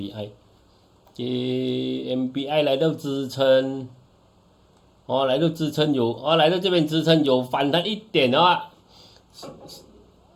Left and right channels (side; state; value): both; identical; correlation 1.00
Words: 来到支撑，来到支撑来到这边支撑有反弹一点的话，